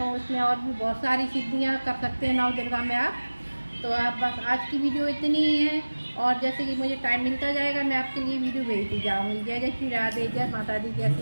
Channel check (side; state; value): both; inverted; correlation -1.00